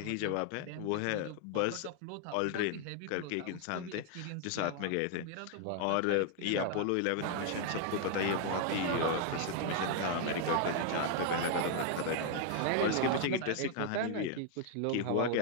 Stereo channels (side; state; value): both; different; correlation 0.00